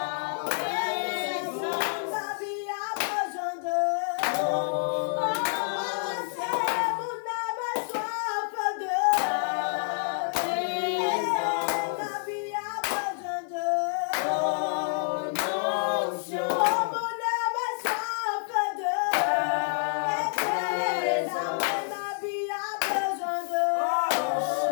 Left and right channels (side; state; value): right; silent; 59 dB below the other